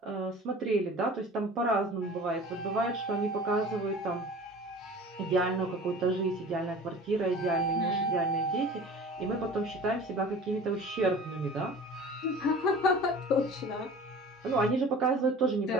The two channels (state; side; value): normal; both; correlation 0.41